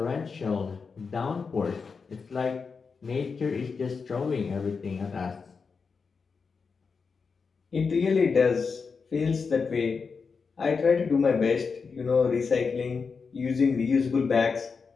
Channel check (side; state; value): right; quieter; 5.2 dB